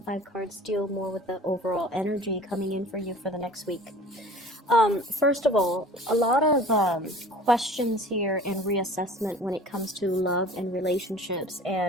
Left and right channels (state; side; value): normal; both; correlation 0.44